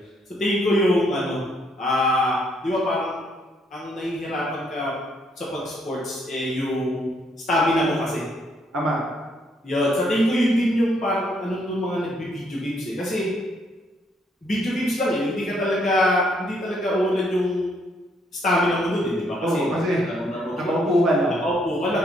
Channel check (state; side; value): normal; both; correlation 0.71